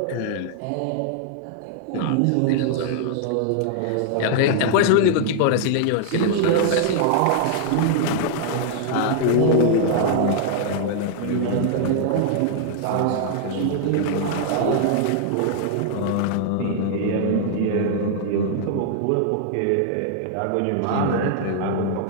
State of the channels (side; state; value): both; different; correlation -0.01